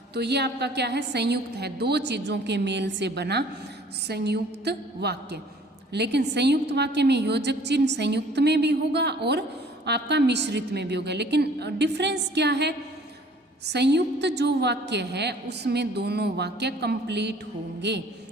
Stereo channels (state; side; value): normal; both; correlation 0.53